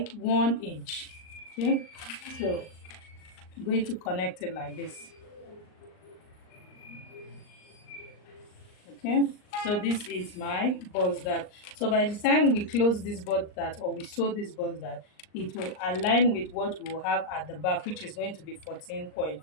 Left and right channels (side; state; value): right; late; 39 ms